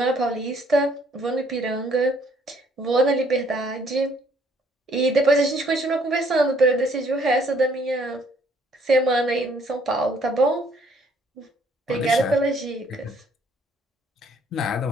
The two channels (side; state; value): both; normal; correlation 0.64